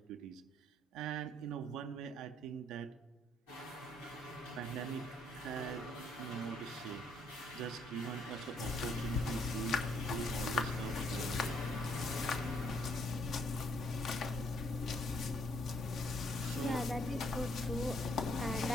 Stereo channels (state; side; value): normal; both; correlation 0.68